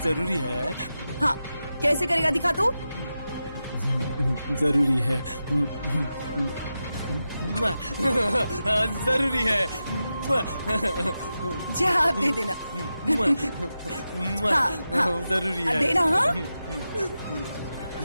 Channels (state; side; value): inverted; both; correlation -0.91